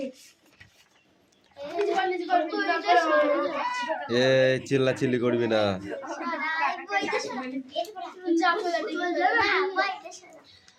এ চিল্লাচিল্লি করবি না।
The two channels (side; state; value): both; identical; correlation 1.00